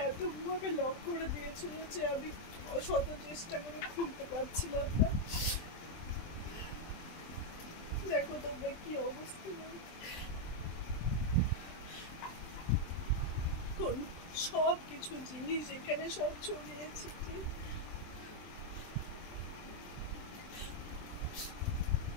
এতভাবে লক করে দিয়েছিল যে আমি শত চেষ্টা করে খুলতে পারছিলাম না। দেখো তোমরা কি অবস্থা, সব কিছু জিনিস এখানে সব ছড়িয়েছি।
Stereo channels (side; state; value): right; late; 23 ms